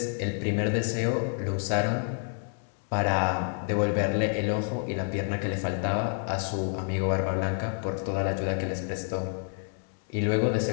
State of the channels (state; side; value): silent; right; 59 dB below the other